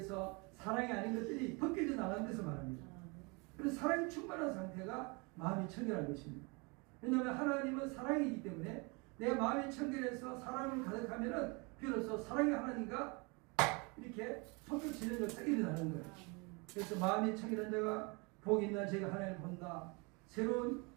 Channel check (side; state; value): left; quieter; 29.7 dB